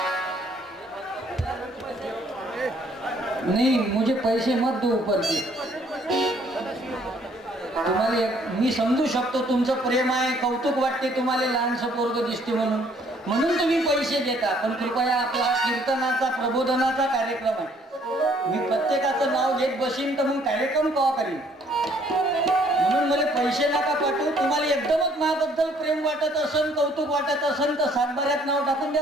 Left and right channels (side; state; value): both; normal; correlation 0.63